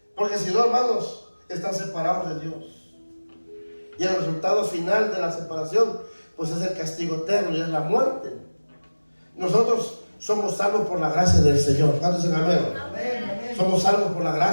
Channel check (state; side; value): inverted; both; correlation -1.00